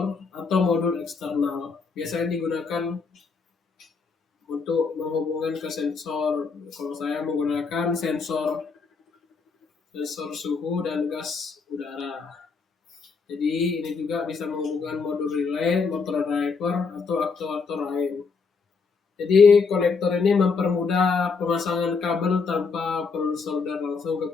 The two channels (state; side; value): quieter; right; 4.9 dB